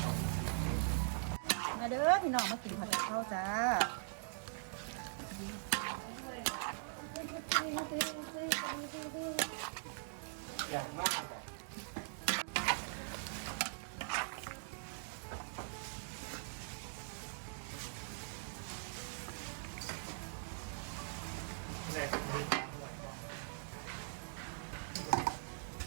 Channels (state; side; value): silent; left; digital silence